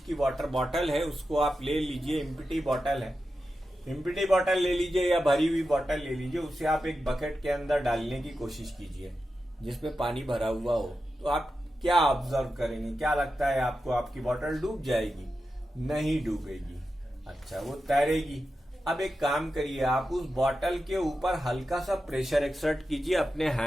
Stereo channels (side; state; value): both; normal; correlation 0.90